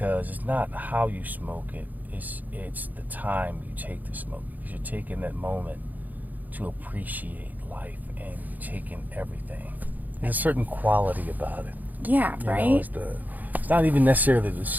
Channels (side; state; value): left; late; 0.082 ms